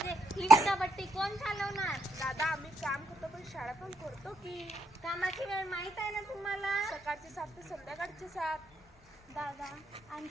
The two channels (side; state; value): both; normal; correlation 0.76